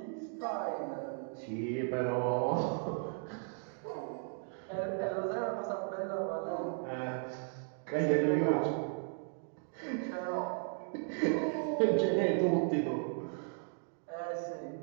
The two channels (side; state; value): left; silent; 54 dB below the other